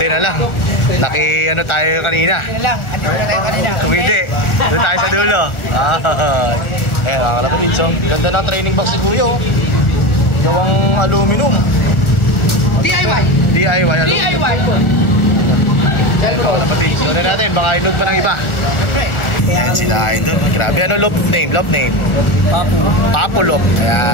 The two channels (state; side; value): late; right; 1.7 ms